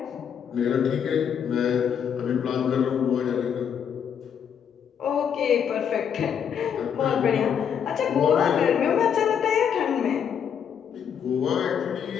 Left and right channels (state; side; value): quieter; right; 8.0 dB